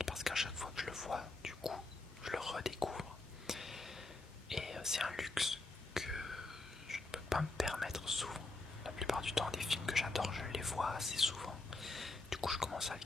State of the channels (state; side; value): quieter; right; 3.3 dB